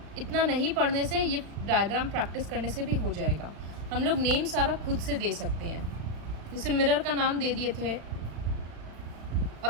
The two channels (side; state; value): left; late; 35 ms